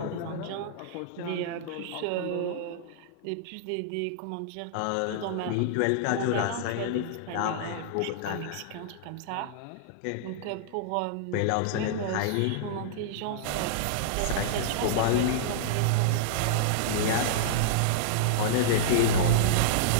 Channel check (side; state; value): both; different; correlation -0.02